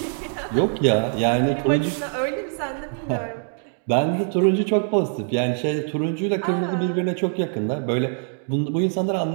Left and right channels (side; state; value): left; silent; 59 dB below the other